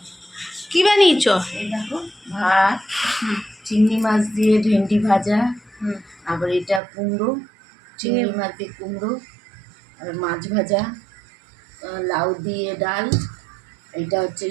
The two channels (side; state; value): left; drops out; at 6.8 s